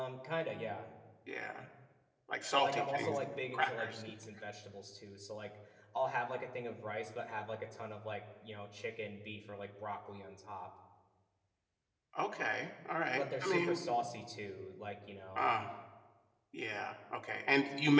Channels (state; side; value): identical; both; correlation 1.00